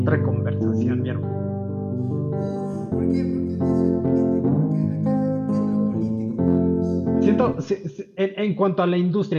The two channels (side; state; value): both; identical; correlation 1.00